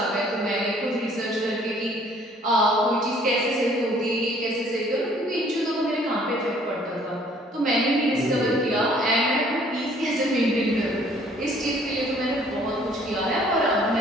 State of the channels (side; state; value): both; normal; correlation 0.58